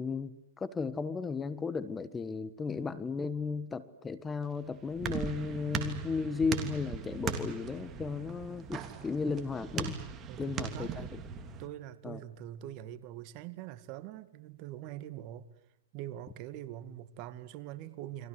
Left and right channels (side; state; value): both; normal; correlation 0.64